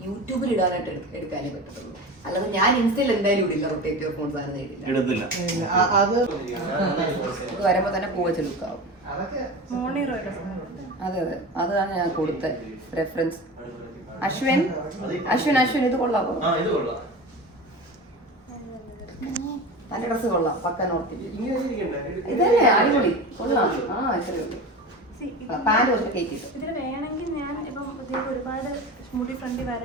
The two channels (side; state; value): both; normal; correlation 0.30